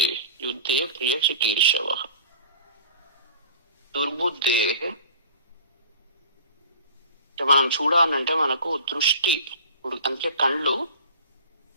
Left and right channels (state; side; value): inverted; both; correlation -0.40